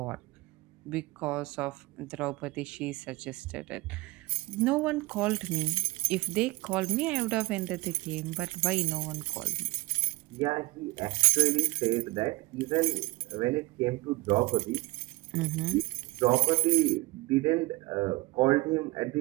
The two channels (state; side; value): quieter; left; 22.5 dB